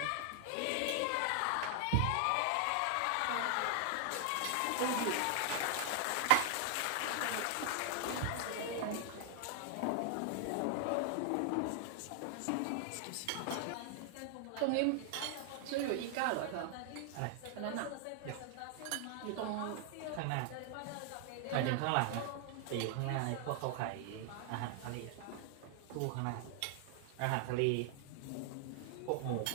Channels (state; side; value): different; both; correlation 0.00